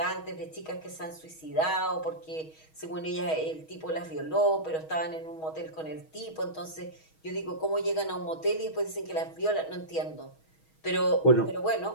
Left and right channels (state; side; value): late; right; 6.3 ms